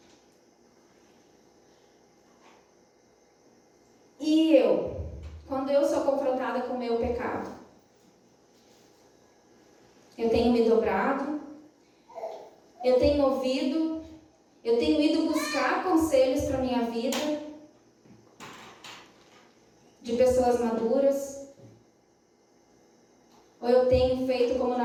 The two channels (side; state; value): both; identical; correlation 1.00